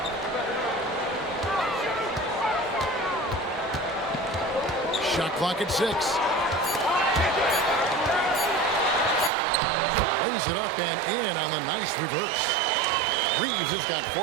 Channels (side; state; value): left; drops out; at 9.3 s